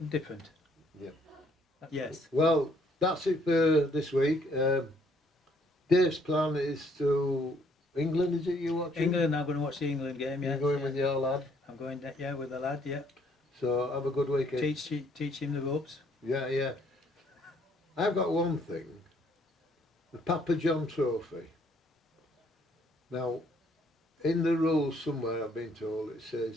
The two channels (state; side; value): normal; both; correlation 0.66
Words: different. Yeah. Yes. Well, that's it for this week. Dave's plan is to England. Is it you watching? England. I'm going to watch the England game. Yeah. You're going with your lad. I'm going. Yeah, with the lad. Yeah. So have a good weekend. Teach him the ropes. Yeah, yeah. I've got one thing. The Papa John Trophy. Now, in the rules somewhere I've been told it